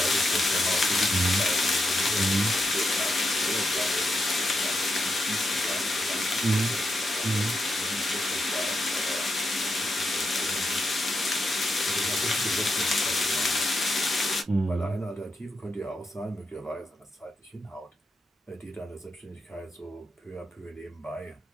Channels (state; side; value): normal; both; correlation 0.84